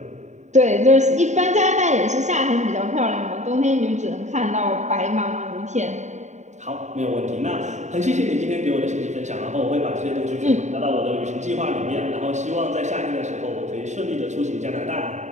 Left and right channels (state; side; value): late; left; 0.34 ms